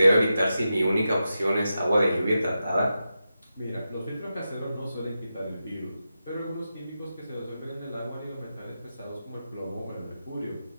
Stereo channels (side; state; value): both; inverted; correlation -0.90